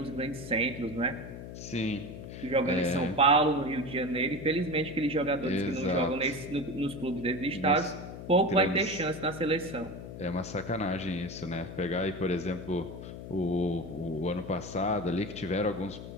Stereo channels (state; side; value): noise; left; hum, 11 dB below the sound